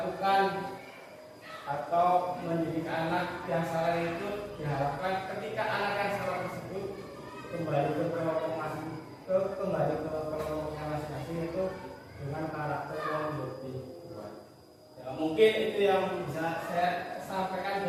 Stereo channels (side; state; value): both; identical; correlation 1.00